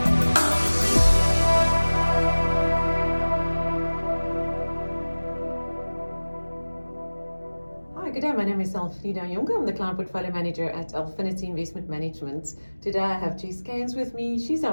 good day. My name is Elfreda, Jonker. I'm the Client Portfolio Manager at Alphinity Investment Management. Today I have Jess Cairns with me. She's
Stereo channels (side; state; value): both; inverted; correlation -1.00